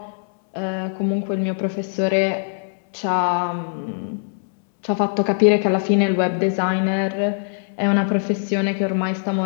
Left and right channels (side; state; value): right; silent; 65 dB below the other